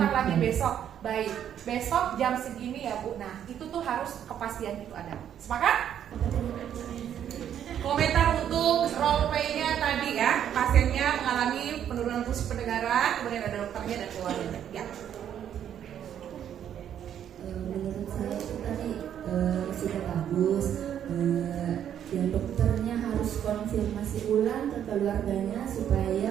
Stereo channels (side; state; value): left; quieter; 9.7 dB